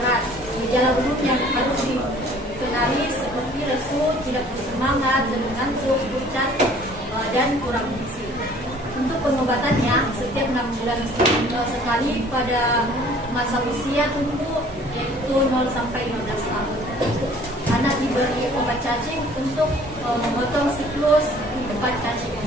Gejala umum yang harus dikenali seperti lesu, tidak bersemangat, ngantuk, pucat, dan kurang gizi. Untuk pengobatannya, setiap 6 bulan sekali pada masa usia tumbuh, yaitu 0 sampai 15 tahun. Anak diberi obat cacing untuk memotong siklus kehidupan cacing.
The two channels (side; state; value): both; normal; correlation 0.53